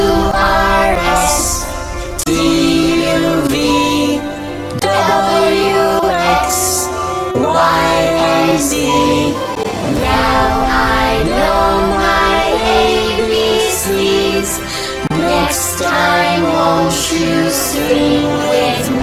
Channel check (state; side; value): identical; both; correlation 1.00